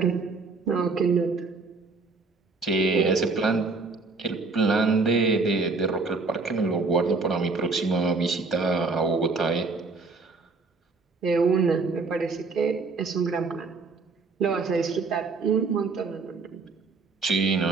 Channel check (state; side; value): quieter; left; 4.0 dB